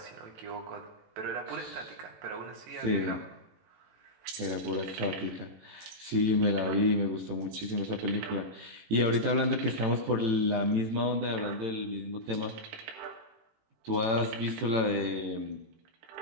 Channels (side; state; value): left; late; 18 ms